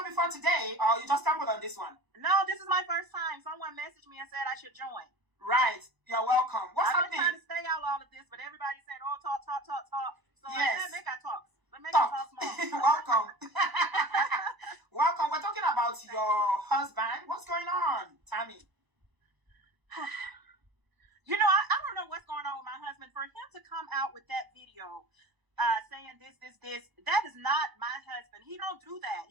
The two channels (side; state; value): left; late; 1.0 ms